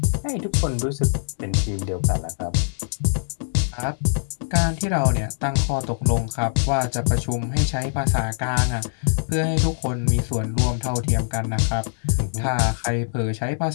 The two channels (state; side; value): silent; right; digital silence